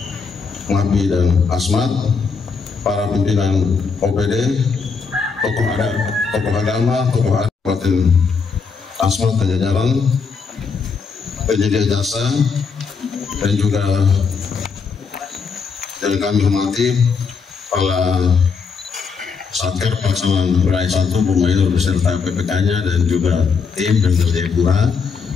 Ngapi dan Asmat, para pimpinan OPD, tokoh agama, tokoh Kabupaten Asmat dan jajaran, penyedia jasa, dan juga yang kami hormati para Satker Pelaksanaan Wilayah 1 Bumayur beserta PPK-nya dan juga tim dan Jayapura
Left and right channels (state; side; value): quieter; right; 5.3 dB